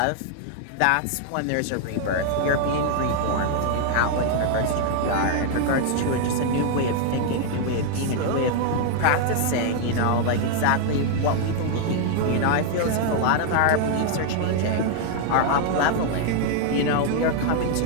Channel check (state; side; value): different; both; correlation 0.00